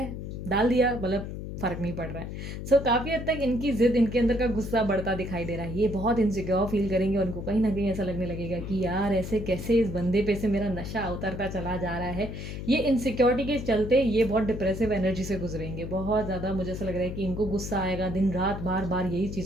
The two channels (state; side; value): noise; left; hum, 7 dB below the sound